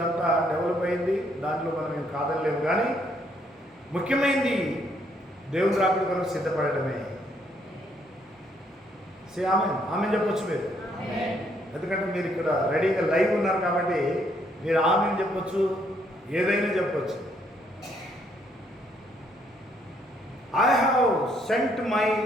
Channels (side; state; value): both; normal; correlation 0.70